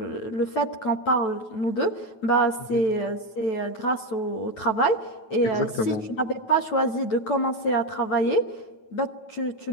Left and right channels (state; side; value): late; right; 9.1 ms